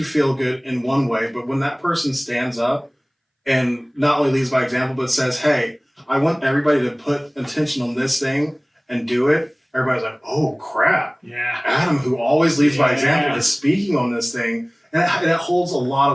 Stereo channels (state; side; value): identical; both; correlation 1.00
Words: feel good in one way, but when that person stands up and not only leads by example, but says, hey, I want everybody to put attention on this thing and do it, everybody's like, oh crap. Yeah. Adam, who always leads by example, is speaking on this thing. And it holds a lot